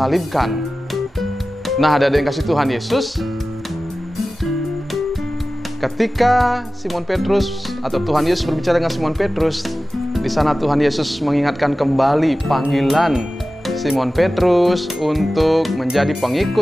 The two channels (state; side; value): normal; both; correlation 0.95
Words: Nah, ada yang kasih Tuhan Yesus. Ketika Simon Petrus atau Tuhan Yesus berbicara dengan Simon Petrus, di sana Tuhan Yesus mengingatkan kembali panggilan Simon Petrus untuk menjadi